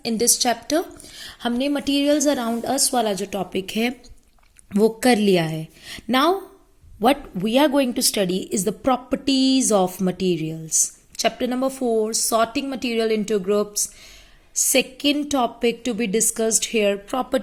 in this chapter. हमने materials around us वाला जो topic है वो कर लिया है. Now what we are going to study is the properties of materials. Chapter number 4, sorting material into groups. Second topic to be discussed here,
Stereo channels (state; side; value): identical; both; correlation 1.00